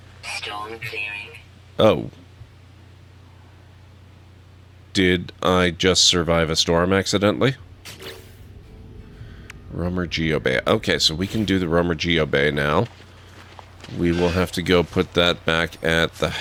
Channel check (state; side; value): identical; both; correlation 1.00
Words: Storm clearing. Oh. Did I just survive a storm accidentally? Rumor Geobay. Okay, so we can do the Rumor Geobay now. We will have to go put that back at the